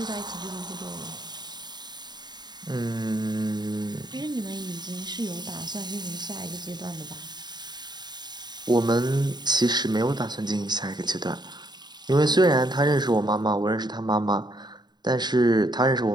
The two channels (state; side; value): late; left; 0.20 ms